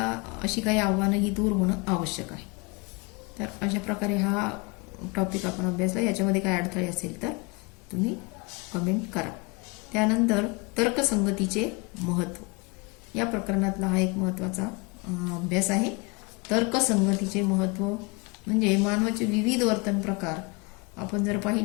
अशी काही आव्हानं ही दूर होणं आवश्यक आहे. तर अशा प्रकारे हा टॉपिक आपण अभ्यासला. याच्यामध्ये काय अडथळे असेल तर तुम्ही कमेंट करा. त्यानंतर तर्कसंगतीचे महत्त्व, या प्रकरणातला हा एक महत्त्वाचा अभ्यास आहे. तर्कसंगतीचे महत्त्व म्हणजे मानवाचे विविध वर्तन प्रकार आपण जर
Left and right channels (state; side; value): quieter; right; 28.5 dB